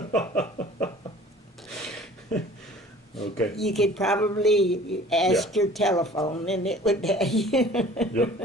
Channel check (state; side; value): normal; both; correlation 0.48